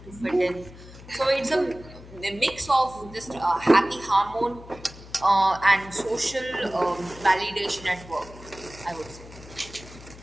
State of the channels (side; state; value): left; noise; hum, 18 dB below the sound